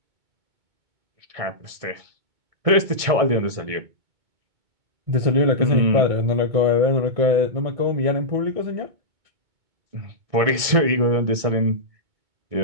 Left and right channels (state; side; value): late; left; 2.2 ms